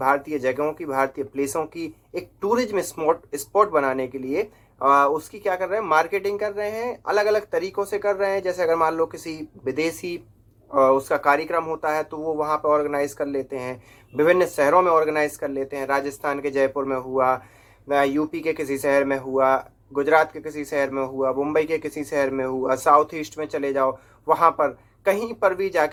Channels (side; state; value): both; identical; correlation 1.00